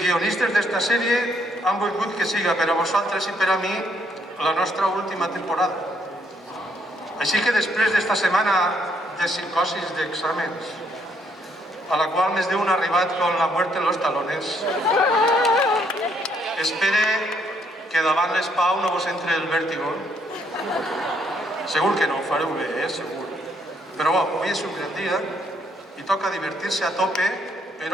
guionistes d'esta sèrie han volgut que siga per a vosaltres i per a mi la nostra última temporada. Així que després d'esta setmana de psicosis d'exàmens, a la qual més d'un ha arribat con la muerte en los talones, espere que davant l'espau no vos entre el vèrtigo. Segur que no, ho fareu bé, segur. Però bo, avui és un gran dia i toca divertir-se a tope,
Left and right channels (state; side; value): normal; both; correlation 0.70